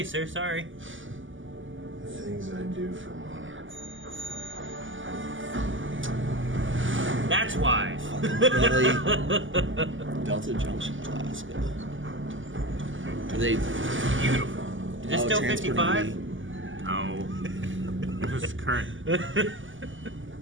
sir. Sorry. The things I do for Monarch. That's why. Really? Delta Junction, Alaska. Are they Beautiful. Is this still transporting 55? me? No. This is current.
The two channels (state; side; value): late; left; 0.57 ms